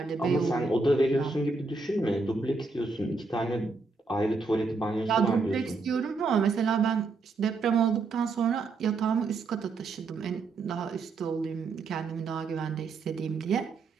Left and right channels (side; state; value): left; quieter; 3.9 dB